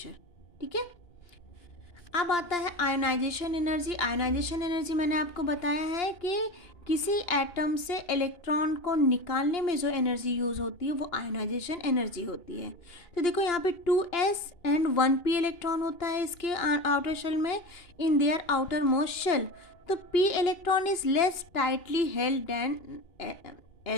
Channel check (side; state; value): right; late; 2.9 ms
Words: ठीक है। अब आता है आयोनाइजेशन एनर्जी। आयोनाइजेशन एनर्जी मैंने आपको बताया है कि किसी एटम से इलेक्ट्रॉन को निकालने में जो एनर्जी यूज़ होती है वो आयोनाइजेशन एनर्जी होती है। तो देखो यहाँ पे 2s एंड 1p इलेक्ट्रॉन होता है इसके आउटर शेल में, in their outermost shell. तो p electron is less tightly held than